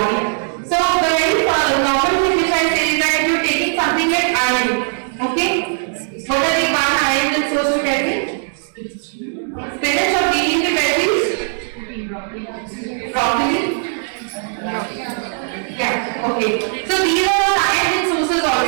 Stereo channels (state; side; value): silent; left; 63 dB below the other